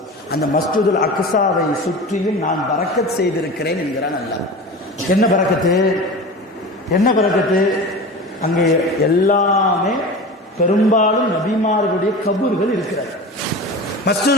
அந்த மஸ்ஜிதுல் அக்ஸாவை சுற்றியும் நான் பரக்கத் செய்திருக்கிறேன் என்கிறான் அல்லாஹ். என்ன பரக்கத்து? அங்கே எல்லாமே பெரும்பாலும் நபிமார்களுடைய கபூர்கள் இருக்கிறது.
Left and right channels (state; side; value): normal; both; correlation 0.32